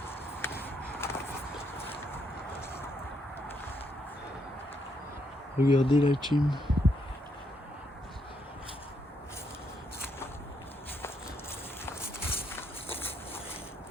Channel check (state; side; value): normal; both; correlation 0.76